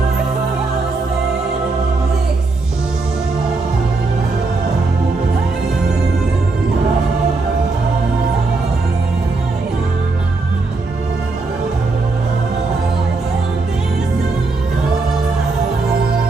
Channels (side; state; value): left; quieter; 3.6 dB